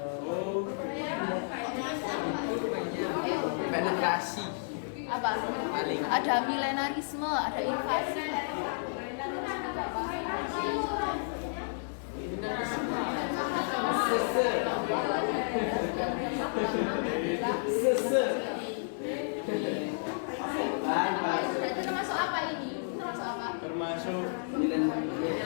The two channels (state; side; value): silent; right; digital silence